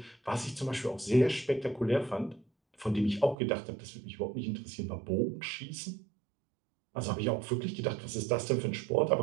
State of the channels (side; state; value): left; drops out; at 3.4 s